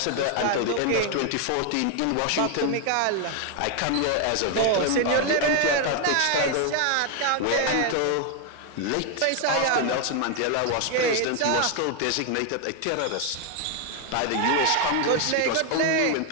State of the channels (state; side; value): different; both; correlation 0.01